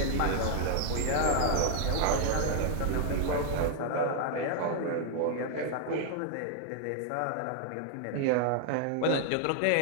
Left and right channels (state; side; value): different; both; correlation 0.00